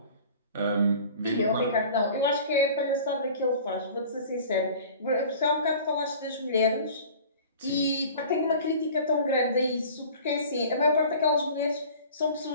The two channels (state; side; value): inverted; both; correlation -0.44